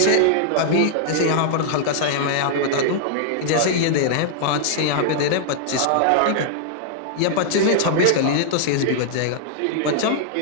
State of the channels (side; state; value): both; different; correlation -0.01